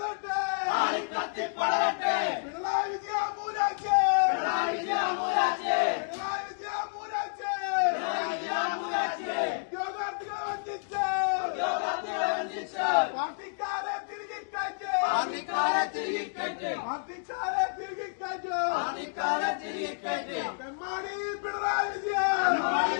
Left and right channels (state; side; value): silent; right; digital silence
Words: ആളിക്കത്തി പടരട്ടെ. പിണറായി വിജയൻ മൂരാച്ചേ, പിണറായി വിജയൻ മൂരാച്ചേ, പിണറായി വിജയൻ മൂരാച്ചേ, പിണറായി വിജയൻ മൂരാച്ചേ. ഉദ്യോഗാർത്ഥികളെ വഞ്ചിച്ച്, ഉദ്യോഗാർത്ഥികളെ വഞ്ചിച്ച് പാർട്ടിക്കാരെ തിരികെ കയറ്റ്, പാർട്ടിക്കാരെ തിരികെ കയറ്റ്, പാർട്ടിക്കാരെ തിരികെ കയറ്റ്, പാർട്ടിക്കാരെ തിരികെ കയറ്റ്. തെമ്മാടി പിണറായി വിജയൻ, പിണറായി